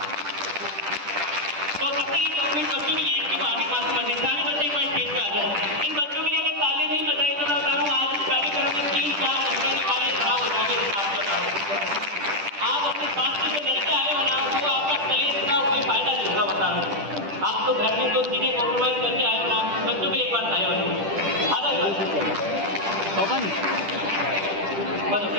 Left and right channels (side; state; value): left; late; 10 ms